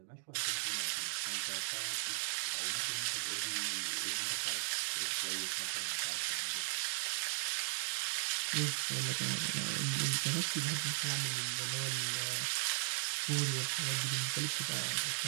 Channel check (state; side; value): silent; left; 53 dB below the other